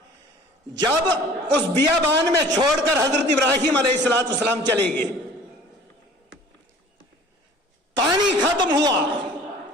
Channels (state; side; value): normal; both; correlation 0.48